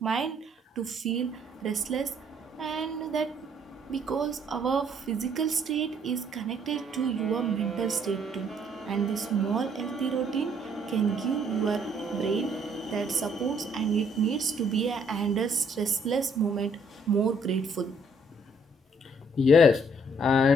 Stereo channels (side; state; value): both; normal; correlation 0.65